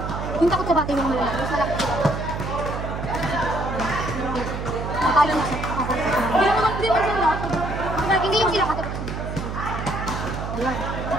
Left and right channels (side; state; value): right; noise; hum, 5 dB below the sound